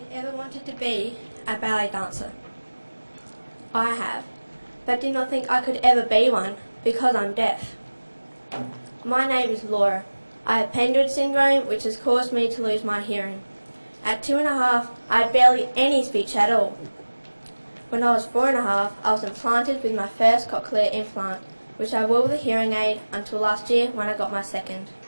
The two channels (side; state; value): both; inverted; correlation -1.00